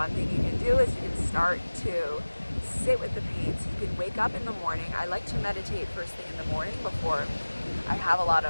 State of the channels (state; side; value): inverted; both; correlation -1.00